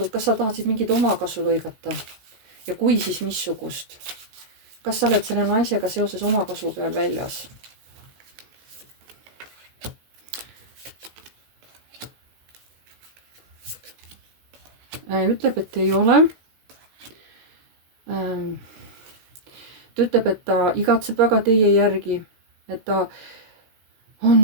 tahtsid mingit omakasu lõigata? Ja kui, siis missugust? Kas sa oled selle naisega seoses omakasu peal väljas? Ütleb, et ei ole. Ta ütleb, et ta igatseb väga teie järgi, et ta on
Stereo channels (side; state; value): left; late; 16 ms